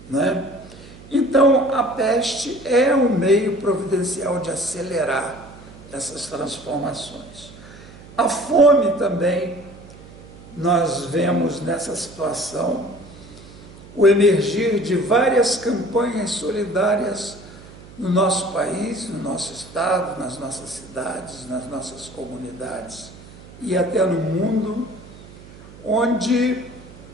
né? Então, a peste é um meio providencial de acelerar essas transformações. A fome também, nós vemos nessa situação o emergir de várias campanhas solidárias no nosso país, no nosso estado, nas nossas cidades, nas nossas comunidades e até no mundo, onde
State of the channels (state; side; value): noise; right; hum, 19 dB below the sound